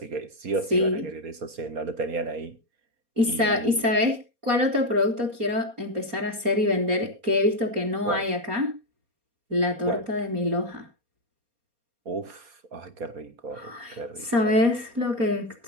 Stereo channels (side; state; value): left; late; 4.3 ms